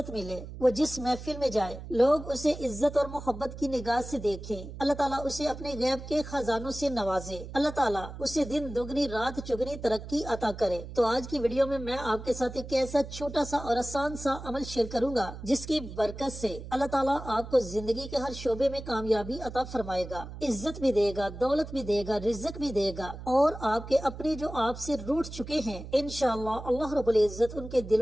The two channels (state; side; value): noise; right; hum, 11 dB below the sound